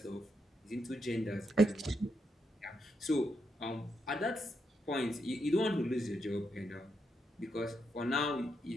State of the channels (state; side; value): normal; both; correlation 0.81